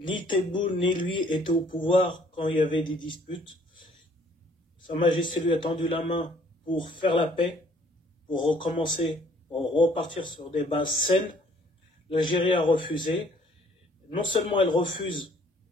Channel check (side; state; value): both; normal; correlation 0.60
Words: Tebboune ni lui étaient au pouvoir quand il y avait des disputes. Sa Majesté lui a tendu la main pour faire la paix, pour recommencer, pour repartir sur des bases saines. L'Algérie a refusé. Non seulement elle refuse,